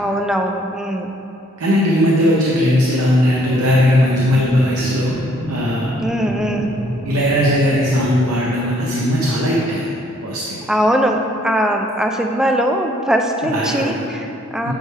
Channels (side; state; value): both; normal; correlation 0.65